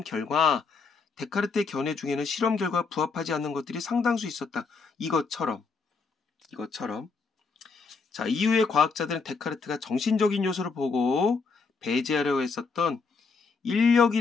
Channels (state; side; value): quieter; right; 4.8 dB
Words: 결과 데카르트의 견해 중에는 실험 결과와 부합하지 않는 것들이 상당수 있었다. 이것처럼. 자, 이후에 과학자들은 데카르트가 정신적인 요소를 보고 배제하려고 했었던